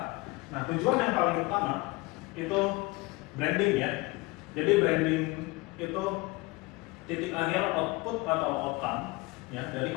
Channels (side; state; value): right; quieter; 23.6 dB